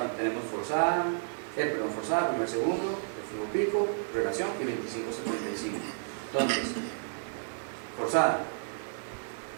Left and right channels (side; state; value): left; silent; digital silence